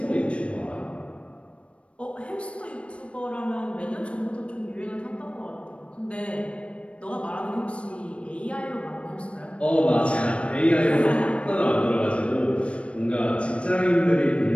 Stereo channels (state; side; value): late; right; 0.060 ms